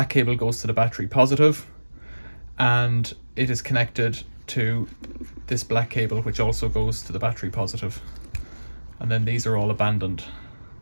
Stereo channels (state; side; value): inverted; both; correlation -1.00